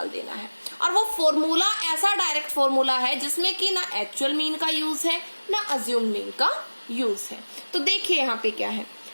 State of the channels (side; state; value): both; inverted; correlation -1.00